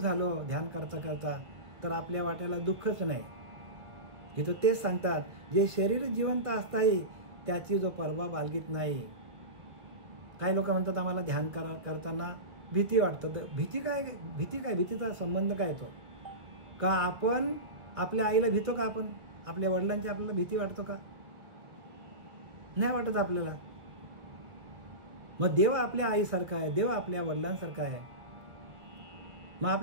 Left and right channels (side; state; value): left; late; 1.3 ms